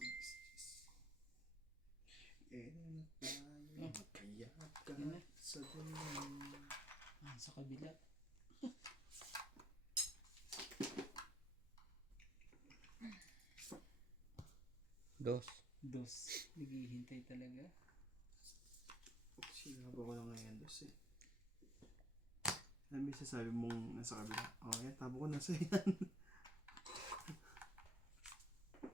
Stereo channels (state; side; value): normal; both; correlation 0.64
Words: Na tayo, kaya ka sa dulo. Sa kabila. Dos. Naghihintay talaga. Sinaba ko lang ngayon, Diyos eh. Ano may sasabi mong nasa kabila? Oh, yan, tabo ko nasa yan.